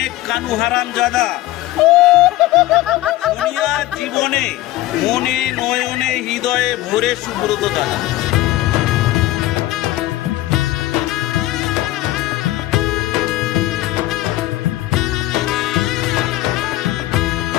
কানু হারামজাদা, সোনিয়ার জীবনে মনে নয়নে হৃদয়ে ভরে সুব্রত দাদা।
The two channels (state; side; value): quieter; right; 16.3 dB